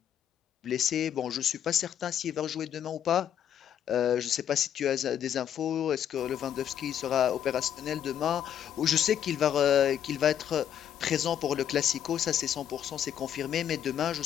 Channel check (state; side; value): quieter; right; 9.6 dB